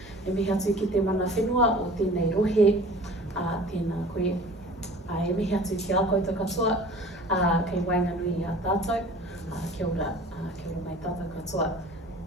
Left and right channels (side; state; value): both; normal; correlation 0.44